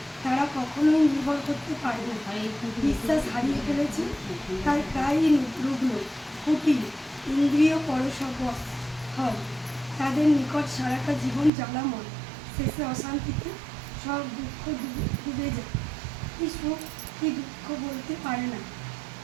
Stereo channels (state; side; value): drops out; left; at 11.5 s